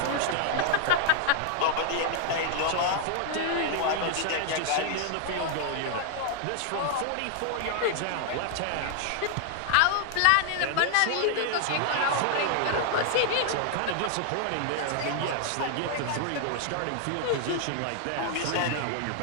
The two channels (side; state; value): both; different; correlation 0.00